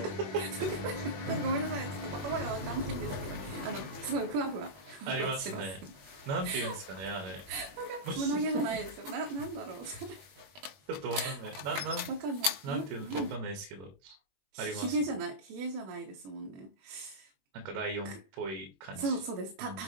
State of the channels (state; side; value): late; left; 21 ms